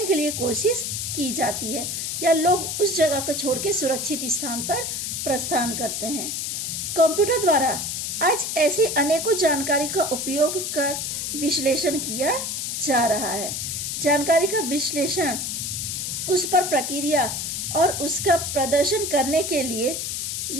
के लिए कोशिश की जाती है, या लोग उस जगह को छोड़ के सुरक्षित स्थान पर प्रस्थान करते हैं। कंप्यूटर द्वारा आज ऐसी अनेकों जानकारी का उपयोग कर विश्लेषण किया जा रहा है। जानकारी का विश्लेषण, उस पर प्रक्रिया और उसका प्रदर्शन करने के लिए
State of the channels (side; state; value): left; noise; hiss, 3 dB below the sound